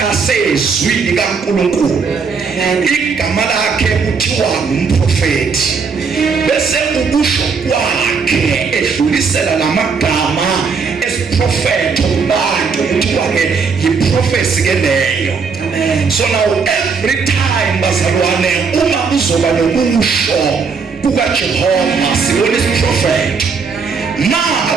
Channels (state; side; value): quieter; left; 5.3 dB